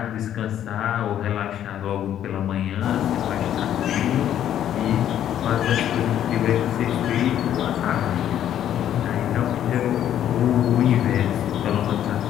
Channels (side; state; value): right; quieter; 10.7 dB